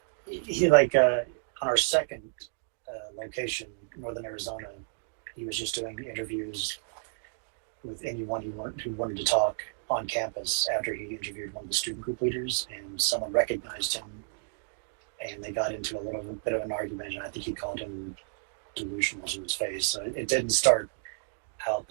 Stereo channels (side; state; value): left; silent; digital silence